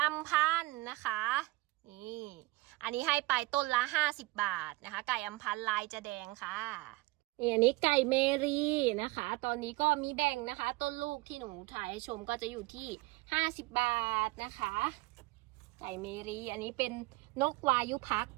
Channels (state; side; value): quieter; left; 22.1 dB